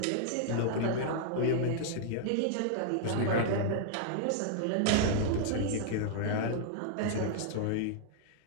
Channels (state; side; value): different; both; correlation -0.01